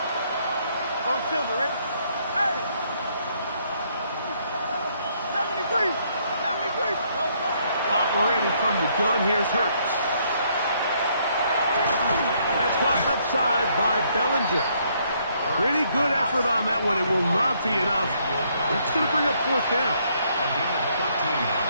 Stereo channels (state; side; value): inverted; both; correlation -0.69